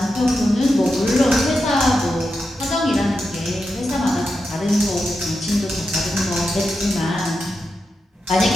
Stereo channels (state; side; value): normal; both; correlation 0.88